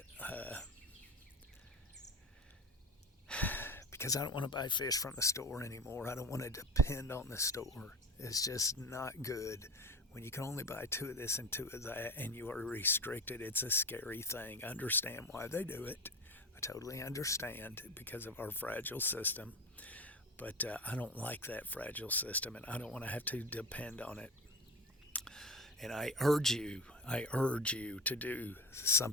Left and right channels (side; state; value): both; normal; correlation 0.28